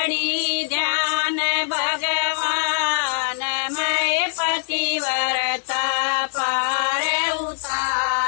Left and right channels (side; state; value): right; silent; 62 dB below the other